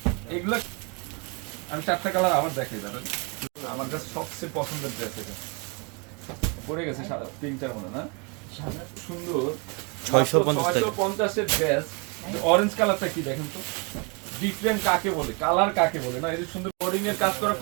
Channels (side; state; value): left; quieter; 32.9 dB